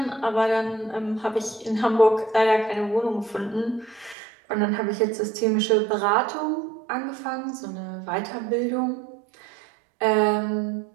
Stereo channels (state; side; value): drops out; left; at 4.2 s